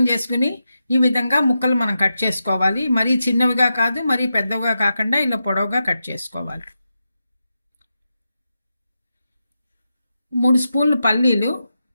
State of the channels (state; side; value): inverted; both; correlation -0.89